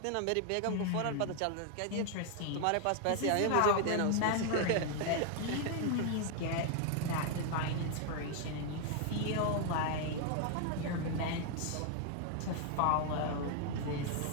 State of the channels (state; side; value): different; both; correlation 0.00